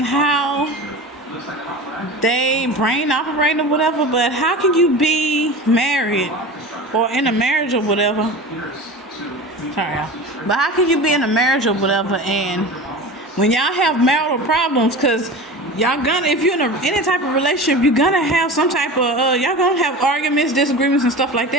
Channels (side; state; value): both; normal; correlation 0.32